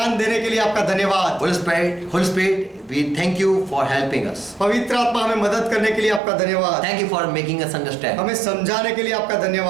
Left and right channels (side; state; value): left; drops out; at 6.2 s